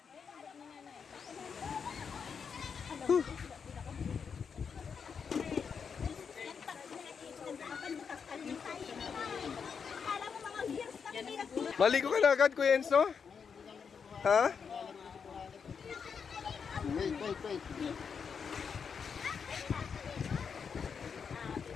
Maligo ka na agad, Kuya Enzo? Ha? Wait.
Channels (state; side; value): quieter; right; 6.3 dB